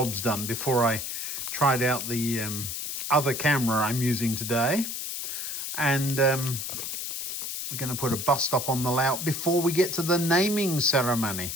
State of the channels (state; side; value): noise; left; hiss, 5 dB below the sound